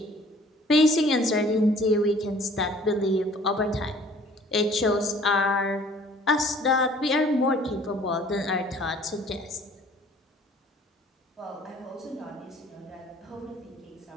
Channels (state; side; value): normal; both; correlation 0.54